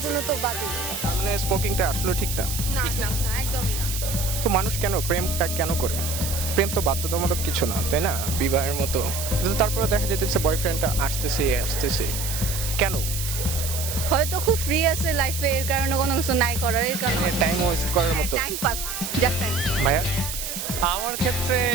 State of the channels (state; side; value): noise; right; hiss, 5 dB below the sound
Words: জন্য তো বাজেই। তার মানে স্মোকিংটা আসলে ঠিক না। না না না, একদমই না। তো মানুষ কেন প্রেমটা কেন করে? প্রেম তো বাধ্যতামূলক কিছু না, তাই না? বিবাহের মতো। কিন্তু তারপরে দেখা যেতেছে বয়ফ্রেন্ডটা আসতেছে কেন? হয়তো খুব ফ্রি আছে লাইফে, এর কারণে কোনো কিছু নাই করার, এর কারণে টাইম ওয়েস্ট করার মতো। Time pass, just time. ভাইয়া আমার ক্ষেত্রে